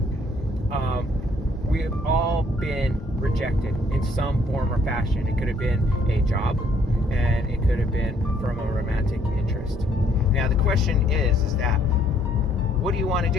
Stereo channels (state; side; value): normal; both; correlation 0.65